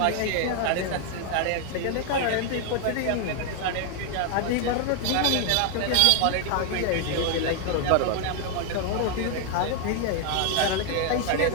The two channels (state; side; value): different; both; correlation 0.00